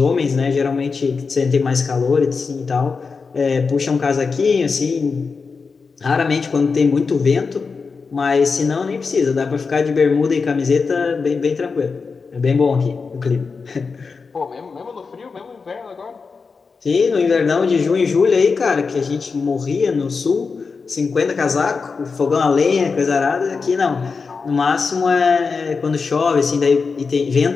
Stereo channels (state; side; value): quieter; right; 4.9 dB